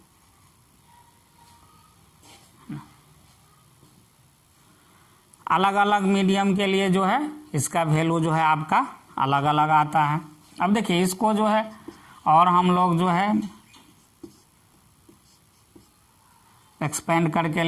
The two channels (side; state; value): both; identical; correlation 1.00